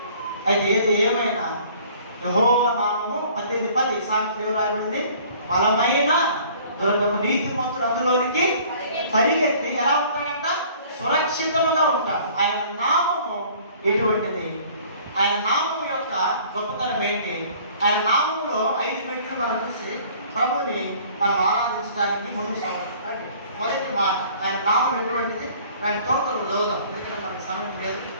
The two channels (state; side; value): inverted; both; correlation -0.53